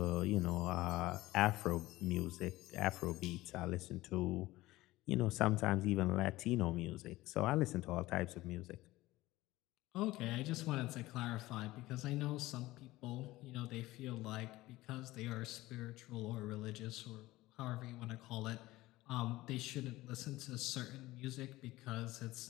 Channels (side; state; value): right; quieter; 18.1 dB